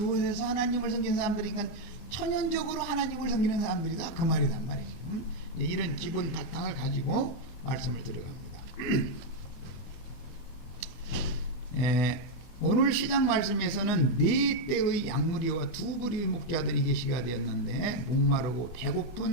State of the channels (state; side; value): late; right; 24 ms